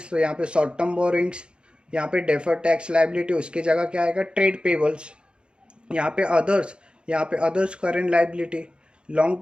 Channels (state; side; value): late; left; 0.053 ms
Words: तो यहाँ पे शॉर्ट टर्म बोरिंग्स, यहाँ पे डेफर टैक्स लाइबिलिटी उसकी जगह क्या आएगा, ट्रेड पेबल्स। यहाँ पे अदर्स, यहाँ पे others current liability, long